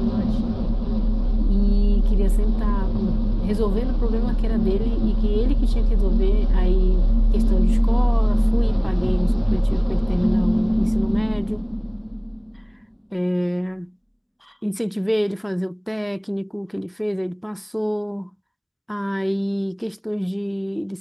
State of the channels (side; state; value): both; identical; correlation 1.00